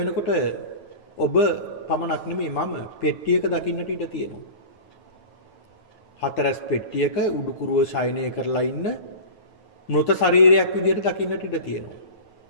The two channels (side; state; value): right; late; 9.3 ms